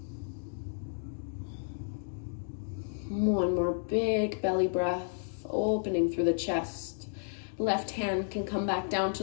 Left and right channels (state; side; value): silent; right; digital silence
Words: One more big belly breath, opening through the chest. Left hand can come back down